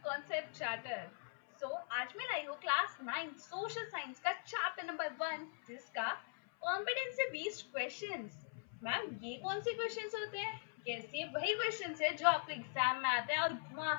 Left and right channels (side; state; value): right; silent; 50 dB below the other